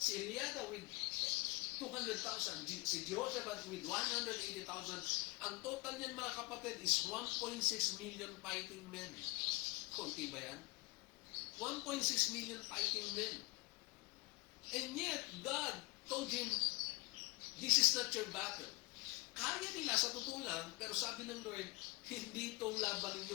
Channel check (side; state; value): right; quieter; 25.3 dB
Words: Eliada with 200,000. Si Jehoshaphat with 180,000. Ang total niyan mga kapatid is 1.6 million fighting men. Kunti ba yan? 1.6 million fighting men. And yet, God told him, this is not your battle. Kaya nila sa totoo lang, pero sabi ng Lord, hindi itong laban